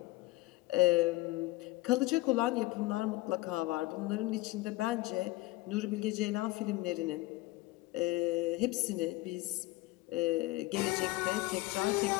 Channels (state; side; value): quieter; right; 19.9 dB